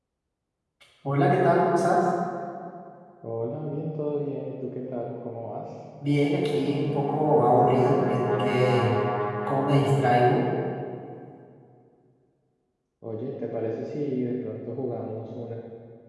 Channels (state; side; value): identical; both; correlation 1.00